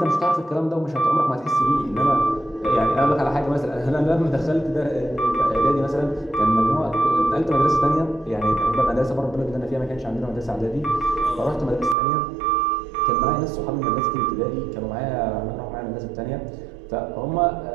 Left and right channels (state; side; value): drops out; left; at 12.0 s